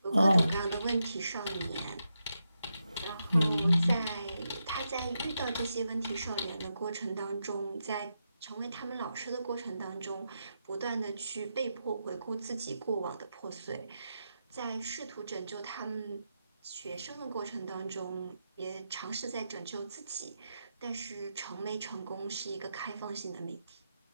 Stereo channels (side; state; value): both; inverted; correlation -0.86